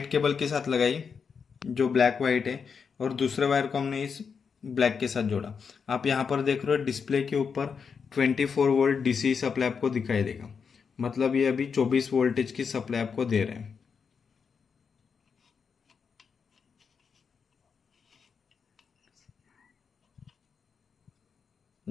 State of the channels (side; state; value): right; quieter; 6.1 dB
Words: केबल के साथ लगाई जो ब्लैक वाइट है, और दूसरे वायर को हमने इस ब्लैक के साथ जोड़ा। आप यहाँ पर देख रहे हो डिस्प्ले के ऊपर 24 वोल्ट डीसी सप्लाई आपको दिखाई देगा, मतलब ये अभी 24 वोल्टेज की सप्लाई आपको दे रहे हैं।